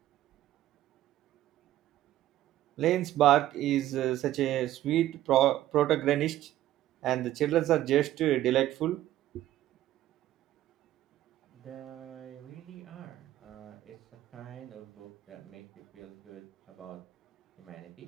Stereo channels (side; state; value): left; quieter; 13.8 dB